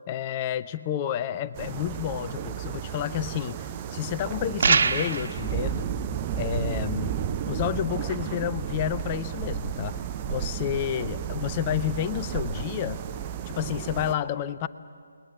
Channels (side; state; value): both; inverted; correlation -0.39